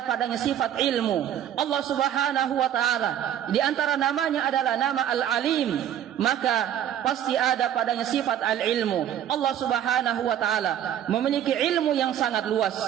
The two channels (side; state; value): left; quieter; 10.4 dB